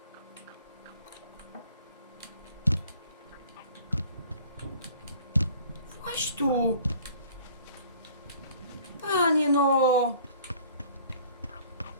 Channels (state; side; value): inverted; both; correlation -0.53